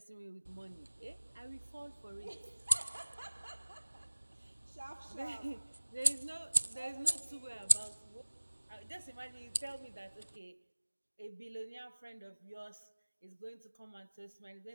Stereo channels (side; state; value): both; inverted; correlation -1.00